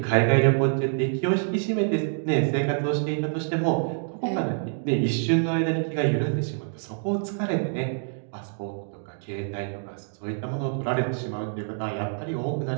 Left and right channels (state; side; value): silent; left; digital silence